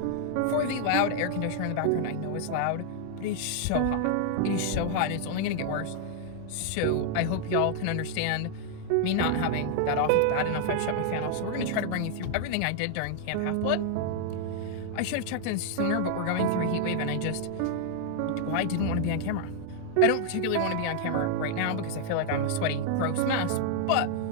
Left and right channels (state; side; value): different; both; correlation 0.00